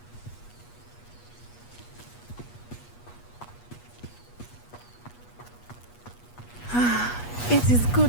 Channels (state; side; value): late; right; 8.3 ms